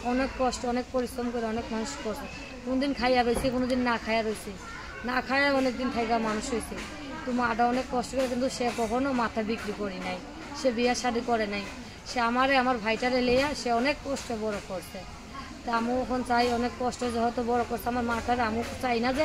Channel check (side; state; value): both; identical; correlation 1.00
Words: অনেক কষ্ট, অনেক পরিশ্রম করে অনেক মানুষ করছে। কোনোদিন খাইয়া রয়েছে, কোনোদিন না খাইয়া রয়েছে, না খাইয়া অনেকদিন থাকা মানুষ হয়েছে। তো মাটা অনেক কষ্ট করে, কিন্তু সে কখনো মাথা বিক্রি করি নাই, সে বিয়া শাদী করে নাই। সে আমার ভাইটারে লিয়া সে অনেক কষ্টে বড় করছে। তা আমিও এখন চাই, অনেক কষ্ট যেহেতু বড় করছে আমার মাটারে, আমিও চাই না